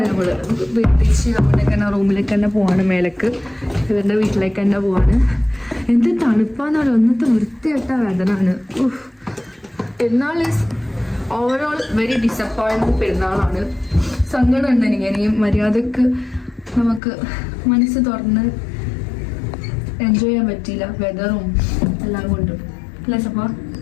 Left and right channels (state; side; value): drops out; right; at 17.0 s